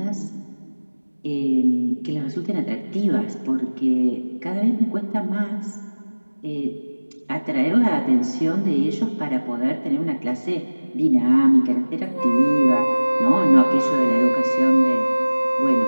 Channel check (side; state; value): both; inverted; correlation -1.00